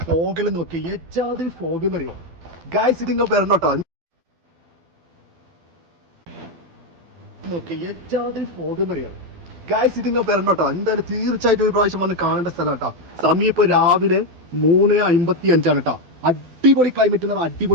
ഫോഗെല്ലാം നോക്കി ഏജാതിൽ ഫോഗ് എന്ന് അറിയോ ഗായ്സ്. ഇത് നിങ്ങൾ വരണോട്ടോ, നോക്കി ഏജാതിൽ ഫോഗ് എന്ന് അറിയാം ഗായ്സ്. ഇത് നിങ്ങൾ വരണോട്ടോ, എന്തായാലും തീർച്ചയായിട്ടും ഒരു പ്രാവശ്യം വന്ന് കാണേണ്ട സ്ഥലം കേട്ടോ. സമയം ഇപ്പൊ രാവിലെ 3:55 കേട്ടോ. അടിപൊളി ക്ലൈമറ്റ് എന്ന് പറഞ്ഞാൽ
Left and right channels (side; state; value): left; late; 12 ms